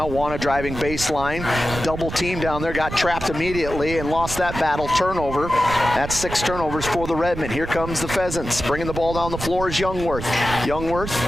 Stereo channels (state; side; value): noise; right; rumble, 8 dB below the sound